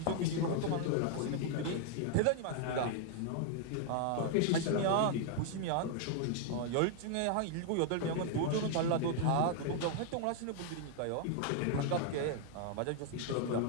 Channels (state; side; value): different; both; correlation 0.00